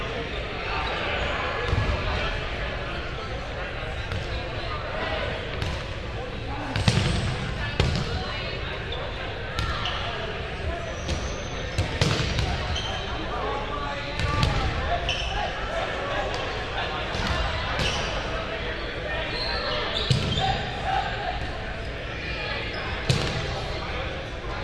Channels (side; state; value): both; identical; correlation 1.00